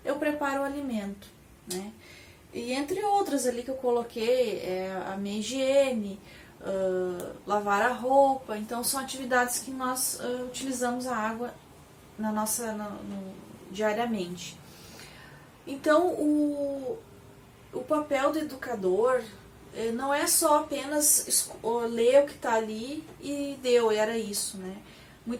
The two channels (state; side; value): identical; both; correlation 1.00